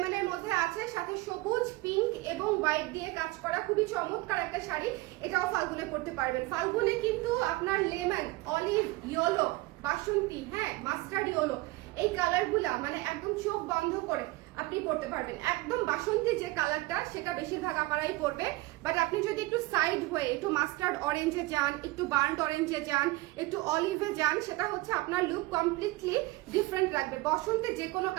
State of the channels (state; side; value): quieter; left; 20.6 dB